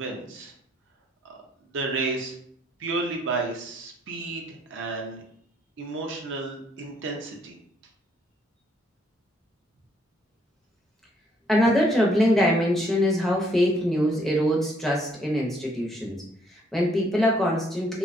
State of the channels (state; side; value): normal; both; correlation 0.67